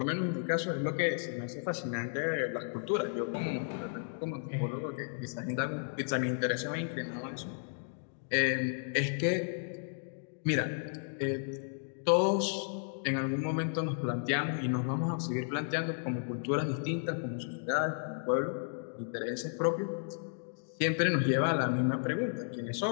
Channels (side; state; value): right; silent; digital silence